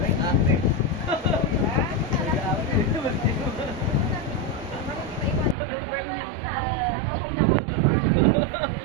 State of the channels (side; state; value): left; drops out; at 5.6 s